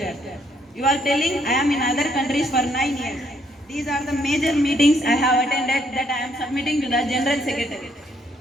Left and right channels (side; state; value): both; normal; correlation 0.70